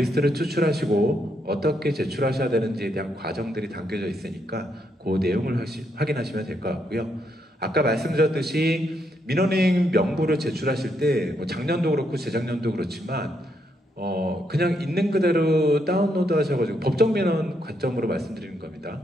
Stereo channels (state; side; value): normal; both; correlation 0.77